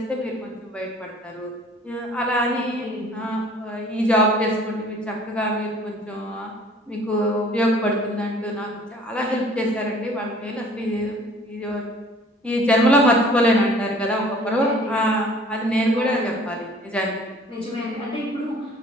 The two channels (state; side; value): normal; both; correlation 0.52